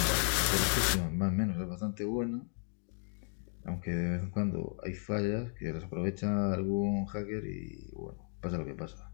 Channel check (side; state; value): right; silent; 55 dB below the other